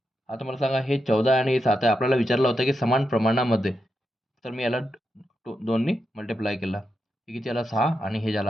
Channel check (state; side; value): normal; both; correlation 0.86